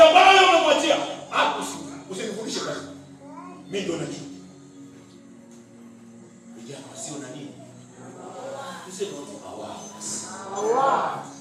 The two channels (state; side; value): identical; both; correlation 1.00